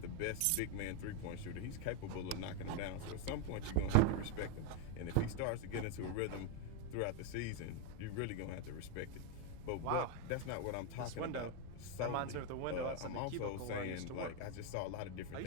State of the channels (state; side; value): different; both; correlation 0.02